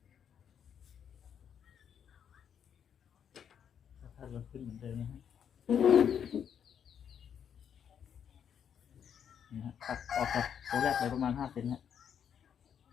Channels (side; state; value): right; quieter; 8.3 dB